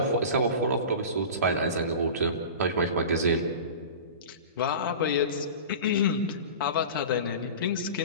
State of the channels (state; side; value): inverted; both; correlation -0.33